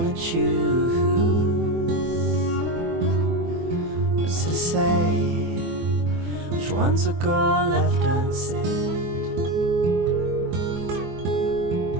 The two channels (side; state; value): left; late; 24 ms